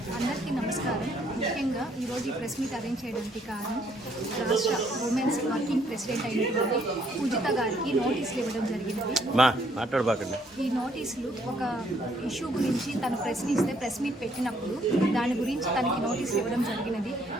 అందరికీ నమస్కారం. ముఖ్యంగా ఈరోజు ఈ ప్రెస్ మీట్ అరేంజ్ చేయడానికి కారణం రాష్ట్ర ఉమెన్స్ వర్కింగ్ ప్రెసిడెంట్ అయినటువంటి పూజిత గారికి నోటీసులు ఇవ్వడం జరిగినది. ఈ నోటీసులు ఒక ఇష్యూ గురించి తను ప్రశ్నిస్తే ప్రెస్ మీట్ పెట్టినప్పుడు దాని గురించి తనకి నోటీసులు ఇవ్వడం జరిగినది.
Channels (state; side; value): normal; both; correlation 0.67